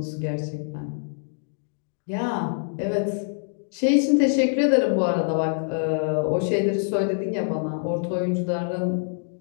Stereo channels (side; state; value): right; silent; digital silence